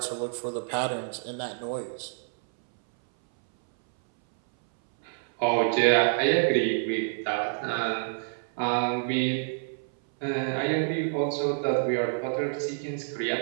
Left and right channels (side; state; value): left; silent; 60 dB below the other